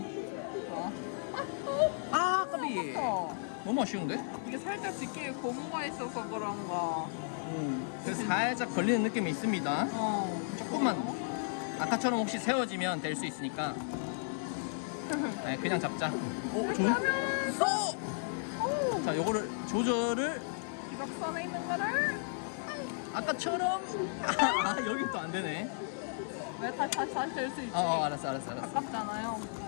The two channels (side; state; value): right; silent; 55 dB below the other